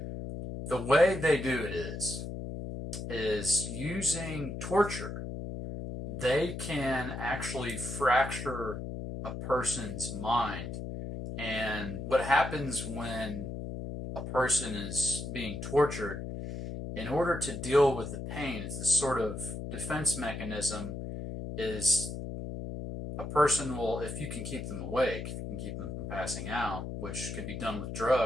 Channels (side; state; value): left; noise; hum, 6 dB below the sound